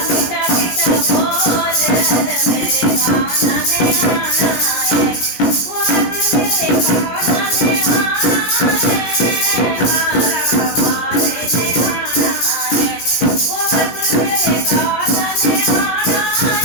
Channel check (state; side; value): late; right; 17 ms